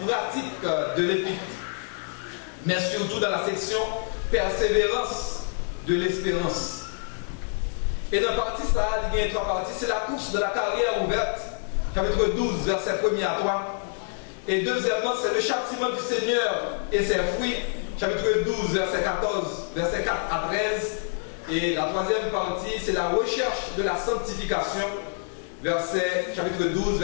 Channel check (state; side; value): silent; right; digital silence